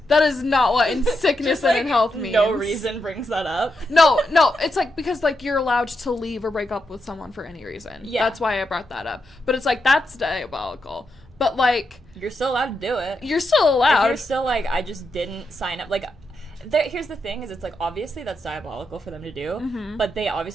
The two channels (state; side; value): normal; both; correlation 0.84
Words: That is not what in sickness Just, and in health means. No reason brings that up. No, it's like because like you're allowed to leave or break up with someone for any reason. Yeah. That's why I brought that up. But it's like that's diabolical. But like you're still allowed to do it. You're still allowed. If you're still like I just didn't sign up. Like here's the thing: is it's like obviously that's diabolical for them to do, but they